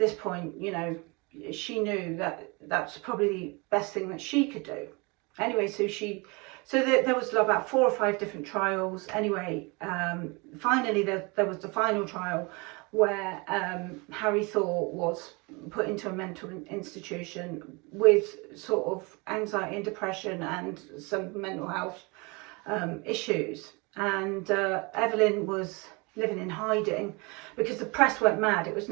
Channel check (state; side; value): quieter; left; 28.2 dB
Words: point, you know, she knew that that's probably the best thing that she could do. Anyway, so she So there was about 4 or 5 different trials. Anyway, finally there was the final trial where Harry Thor was put into a mental institution with sort of anxiety and depression and some mental health issues. And Evelyn was living in hiding because the press went mad. It was